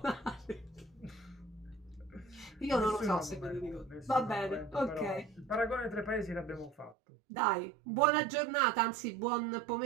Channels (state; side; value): drops out; left; at 7.0 s